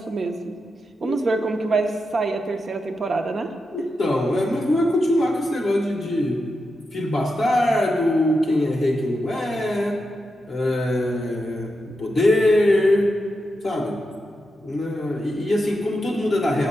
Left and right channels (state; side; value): normal; both; correlation 0.88